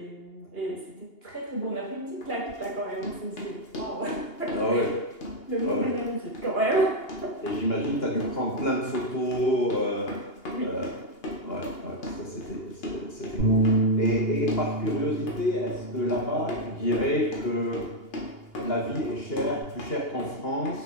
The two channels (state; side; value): late; right; 2.8 ms